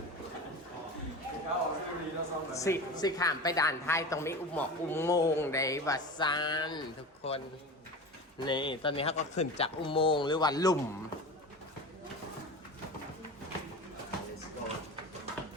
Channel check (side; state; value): both; normal; correlation 0.30